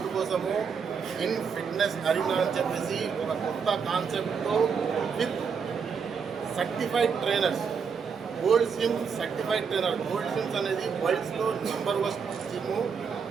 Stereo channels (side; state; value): left; quieter; 6.2 dB